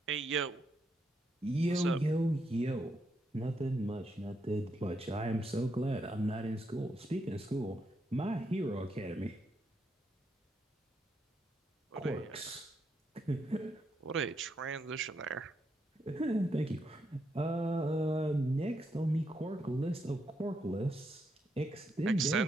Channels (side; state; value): both; normal; correlation 0.80